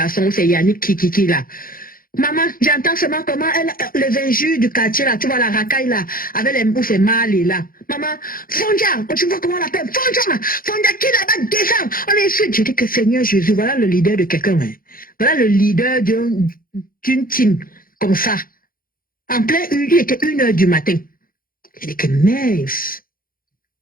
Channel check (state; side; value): late; right; 0.41 ms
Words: c'est Yannick qui là. Maman, j'entends seulement comment les injures du quartier là, tu vois la racaille là, avec les mots c'est mal et là. Maman, Fondia, tu vois comment on l'appelle? Fondia qui là-bas descend. On est ici. Je dis que Seigneur Jésus, voilà le leader de quelqu'un. Hein. Voilà le leader d'une team comme ça. En plein il était 1 heure du matin. Je dis que mince.